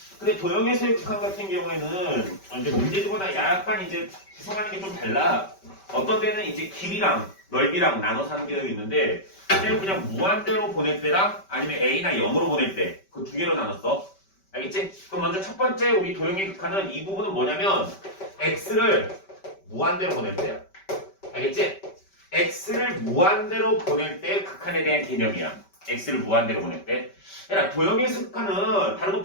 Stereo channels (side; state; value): right; late; 5.2 ms